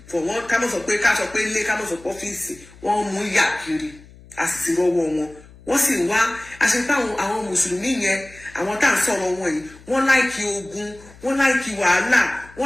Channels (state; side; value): noise; left; hum, 22 dB below the sound